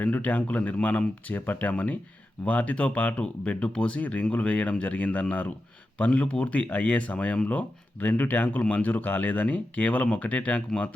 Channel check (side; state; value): both; normal; correlation 0.90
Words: ట్యాంకుల నిర్మాణం చేపట్టామని, వాటితో పాటు బెడ్డు పోసి రింగులు వేయడం జరిగిందన్నారు. పనులు పూర్తి అయ్యే సమయంలో 2 ట్యాంకులు మంజూరు కాలేదని, కేవలం 1 ట్యాంకు